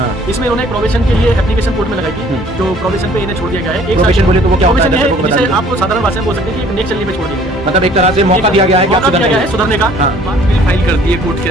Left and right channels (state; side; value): normal; both; correlation 0.56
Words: इसमें उन्होंने प्रोबेशन के लिए एप्लीकेशन कोर्ट में लगाई थी, जो प्रोबेशन पे इन्हें छोड़ दिया गया है। प्रोबेशन बोले तो वो क्या होता है? प्रोबेशन है, जिसे आपको साधारण भाषा में बोल सकते हैं कि एक नेक चलने पे छोड़ दिया गया है। मतलब एक तरह से मौका दिया गया है कि आप मौका दिया गया है सुधरने का। हाँ। बात मेरी फाइल कर दी है कोर्ट के